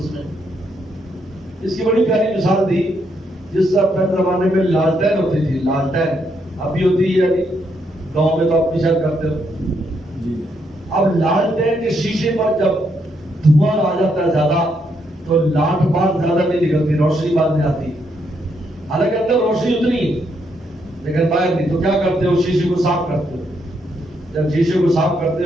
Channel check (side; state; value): both; normal; correlation 0.76